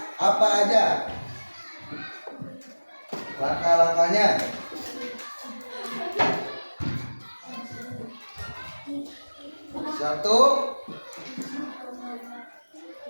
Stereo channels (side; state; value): both; inverted; correlation -1.00